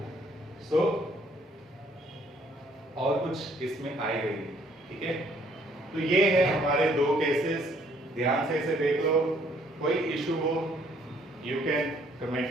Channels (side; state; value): both; normal; correlation 0.64